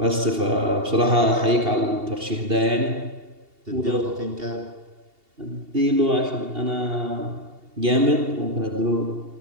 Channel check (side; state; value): left; late; 2.8 ms